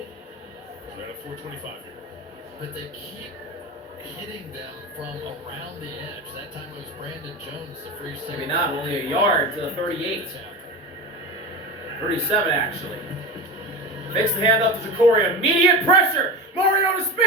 But they keep hitting them from around the edge. That time it was Brandon Jones, the free safety. Maybe not, only a yard to the 38. 37, actually. Makes the handoff to Jacory. Immediate pressure. Mariota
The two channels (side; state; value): both; normal; correlation 0.26